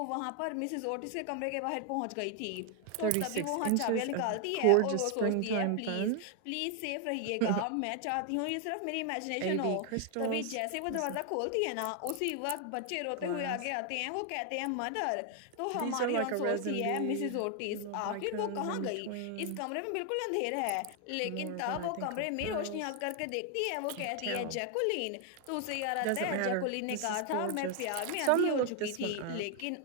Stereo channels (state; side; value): different; both; correlation 0.00